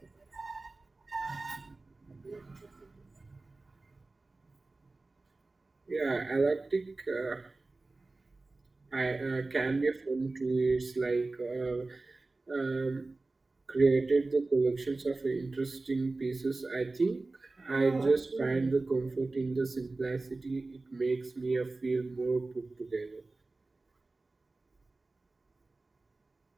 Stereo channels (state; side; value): quieter; left; 3.3 dB